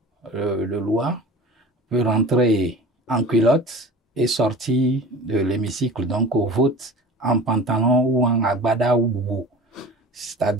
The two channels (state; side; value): normal; both; correlation 0.38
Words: de loi peut rentrer en culotte et sortir de l'hémicycle, donc au vote en pantalon ou en agbada ou boubou.